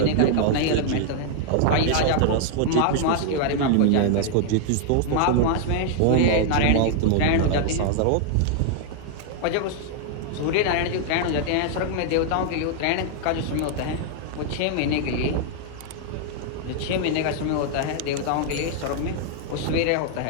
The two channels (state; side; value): different; both; correlation 0.00